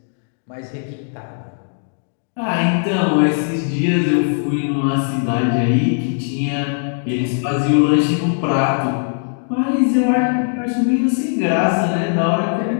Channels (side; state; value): right; silent; digital silence